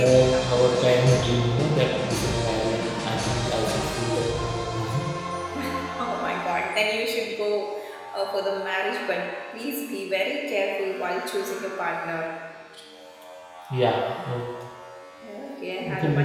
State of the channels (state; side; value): identical; both; correlation 1.00